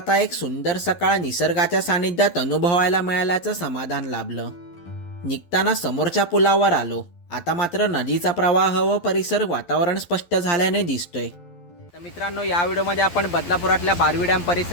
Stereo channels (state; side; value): late; right; 11 ms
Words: एक सुंदर सकाळ निसर्गाच्या सानिध्यात अनुभवायला मिळाल्याचं समाधान लाभलं. निघताना समोरच्या पुलावर आलो. आता मात्र नदीचा प्रवाह व परिसर वातावरण स्पष्ट झाल्याने दिसतोय. तर मित्रांनो, या व्हिडिओमध्ये आपण बदलापुरातल्या बारवी डॅम